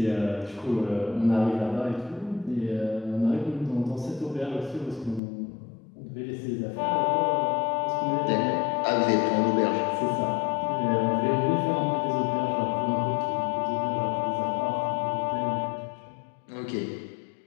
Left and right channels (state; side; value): drops out; right; at 5.2 s